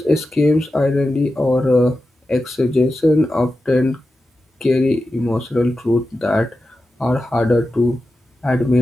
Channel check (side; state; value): both; normal; correlation 0.92